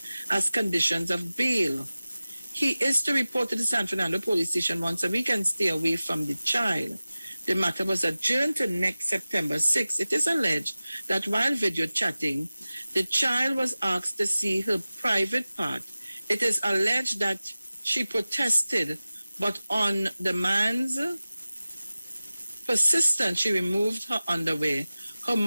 as conditions of bail. He is to report to the San Fernando police station once a week and stay away from the child. The matter was adjourned to next September 6. It is alleged that while video chatting, the child was asked to see her private part. It is alleged that she protested, but on the man's persistence, she removed her underwear. Her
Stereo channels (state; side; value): inverted; both; correlation -0.97